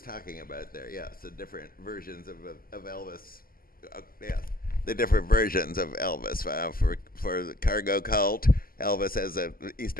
talking about there. Yeah, so different versions of Elvis. Yeah, the different versions of Elvis. For the cargo cult, Elvis as a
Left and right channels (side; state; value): right; late; 0.42 ms